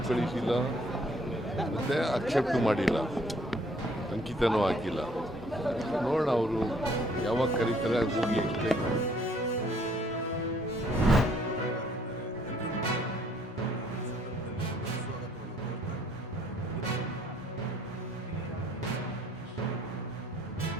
ಕಳಿಸಿಲ್ಲ, ಮತ್ತು ಅಕ್ಸೆಪ್ಟ್ ಮಾಡಿಲ್ಲ, ಅಂಕಿತನೂ ಹಾಕಿಲ್ಲ. ನೋಡೋಣ ಅವರು ಯಾವಾಗ ಕರೀತಾರೆ ಹೋಗಿ ಎಕ್ಸ್ಪ್ಲೈನ್ ಮಾಡಿ.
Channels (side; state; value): both; normal; correlation 0.63